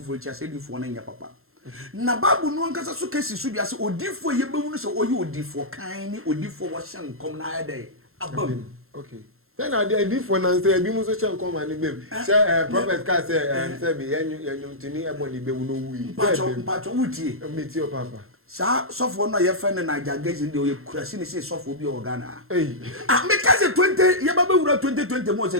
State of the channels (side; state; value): left; late; 0.62 ms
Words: chi ase difo na nya papa na Bible no ankasa so kesi so dia se odifo ye bewu no se oyi odifo kan ni odifo wo shan kom na ya dai abam. Okay. Then I did for nan say bi mu so chen come and be. Say prophet ka say be yenyum tini eboni be wu no wi. Pacho wuti. Meet your papa. Sa sofo no ye friend na jagage de o kurasi ni say sofo bi o Ghana. Eh. Me ka say 20 ye ba wura 2020 mo say